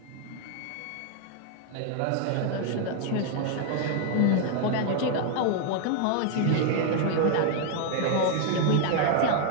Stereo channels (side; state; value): both; different; correlation 0.00